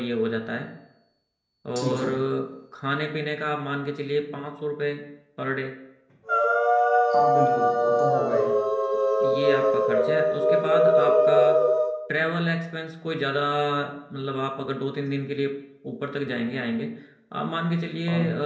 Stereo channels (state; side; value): identical; both; correlation 1.00